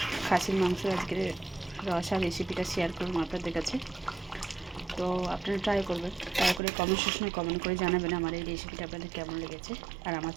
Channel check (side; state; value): left; drops out; at 6.6 s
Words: খাসির মাংস আজকের রসা রেসিপিটা শেয়ার করুন আপনাদের কাছে। তো আপনারা ট্রাই করবেন, ট্রাই করে কমেন্ট সেকশনে কমেন্ট করে জানাবেন আমার এই রেসিপিটা আপনাদের কেমন লেগেছে। আর আমার